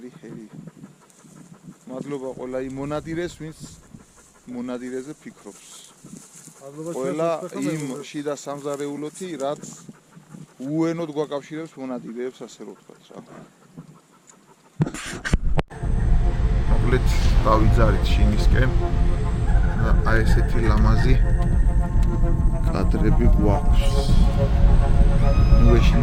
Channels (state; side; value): identical; both; correlation 1.00